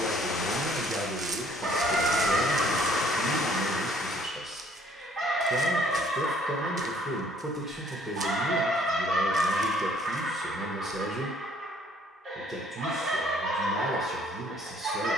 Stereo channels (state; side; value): normal; both; correlation 0.60